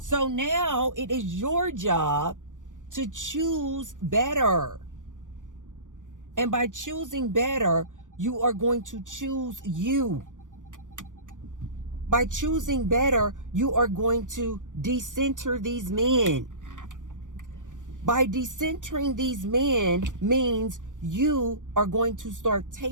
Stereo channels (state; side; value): late; left; 0.87 ms